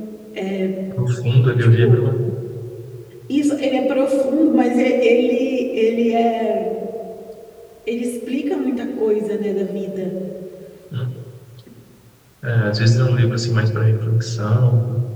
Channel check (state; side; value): identical; both; correlation 1.00